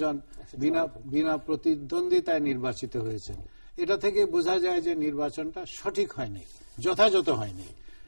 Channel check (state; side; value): inverted; both; correlation -1.00